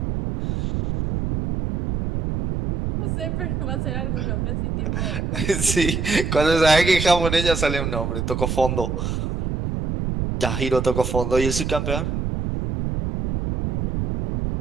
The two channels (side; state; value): right; noise; rumble, 2 dB below the sound